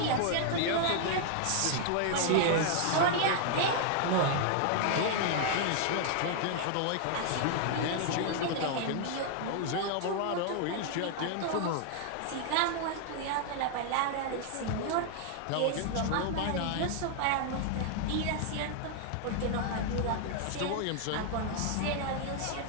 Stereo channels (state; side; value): different; both; correlation 0.00